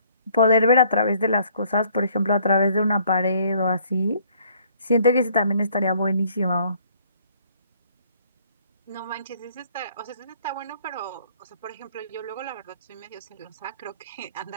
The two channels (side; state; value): both; inverted; correlation -0.61